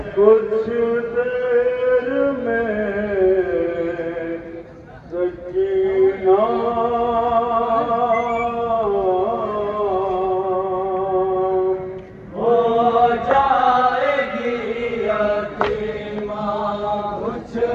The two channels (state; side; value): identical; both; correlation 1.00